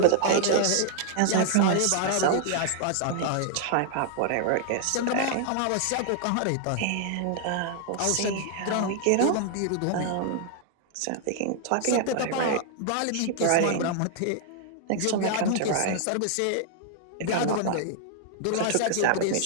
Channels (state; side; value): different; both; correlation 0.00